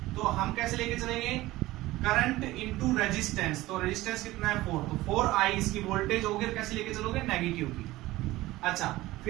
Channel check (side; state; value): left; quieter; 17.8 dB